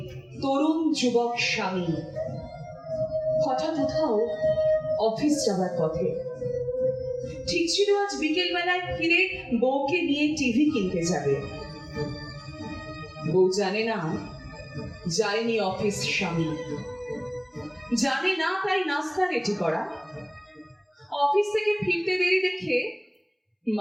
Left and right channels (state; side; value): identical; both; correlation 1.00